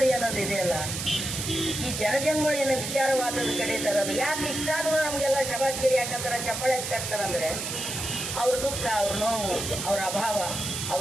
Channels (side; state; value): right; noise; hiss, 4 dB below the sound